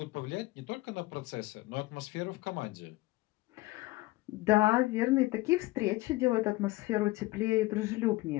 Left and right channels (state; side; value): quieter; right; 19.6 dB